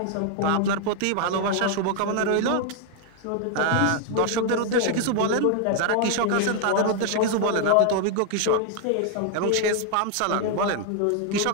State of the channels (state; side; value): different; both; correlation 0.00